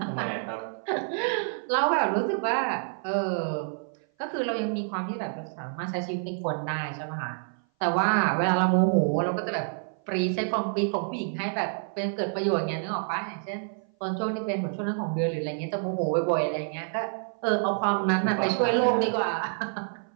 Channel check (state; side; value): silent; left; 56 dB below the other